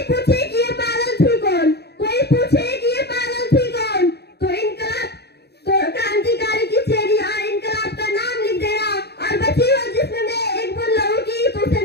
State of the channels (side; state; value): right; late; 0.48 ms